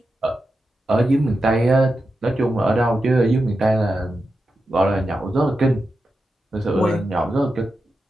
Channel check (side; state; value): both; normal; correlation 0.89